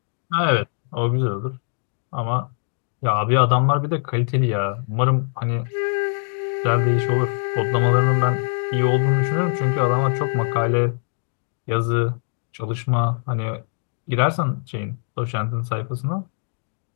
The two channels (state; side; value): silent; right; 64 dB below the other